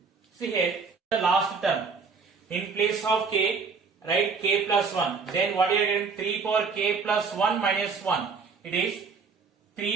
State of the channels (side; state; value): left; quieter; 5.0 dB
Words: see here the last term, in place of k write k plus 1, then what you are getting, 3 power k plus 1 minus 1, it is